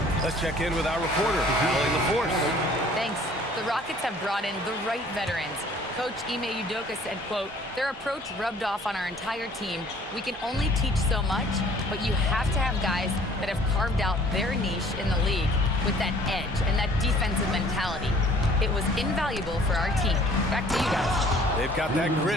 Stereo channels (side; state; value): both; normal; correlation 0.54